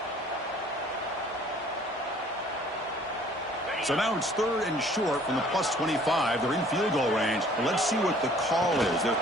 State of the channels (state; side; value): normal; both; correlation 0.55